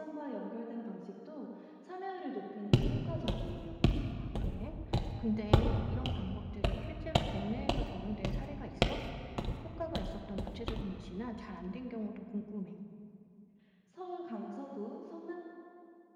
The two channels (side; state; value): both; identical; correlation 1.00